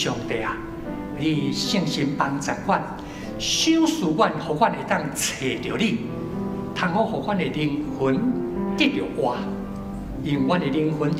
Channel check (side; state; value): both; identical; correlation 1.00